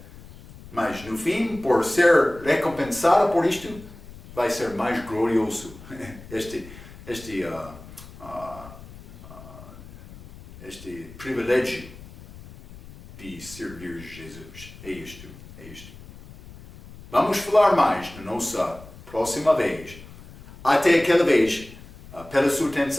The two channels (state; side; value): noise; left; rumble, 18 dB below the sound